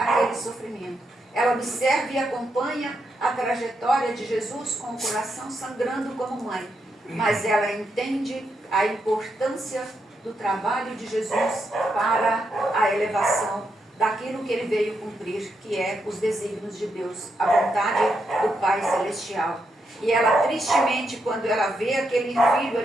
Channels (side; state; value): both; normal; correlation 0.82